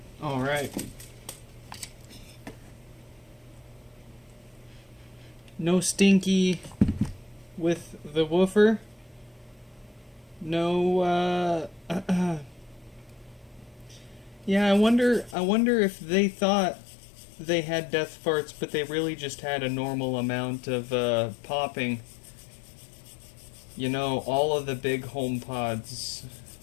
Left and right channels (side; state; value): right; drops out; at 15.4 s